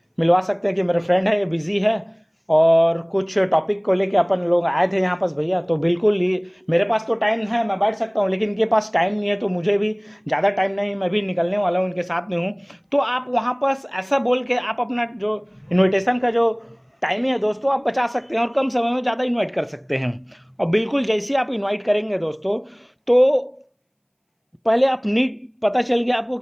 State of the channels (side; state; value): both; identical; correlation 1.00